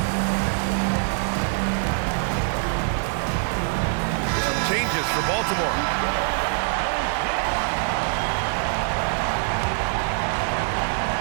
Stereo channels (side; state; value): left; silent; digital silence